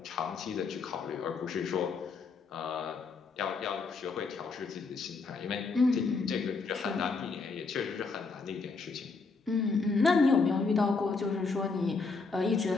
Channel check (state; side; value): quieter; right; 4.4 dB